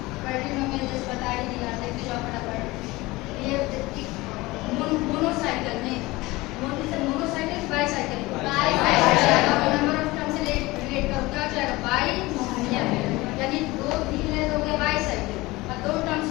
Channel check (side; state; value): right; quieter; 20.8 dB